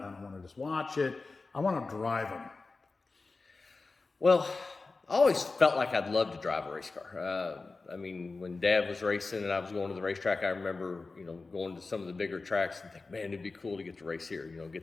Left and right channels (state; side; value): quieter; right; 3.8 dB